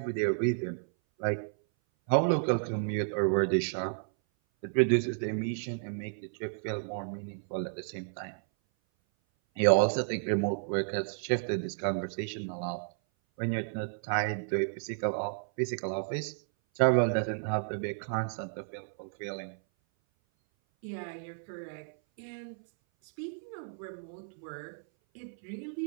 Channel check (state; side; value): silent; left; 56 dB below the other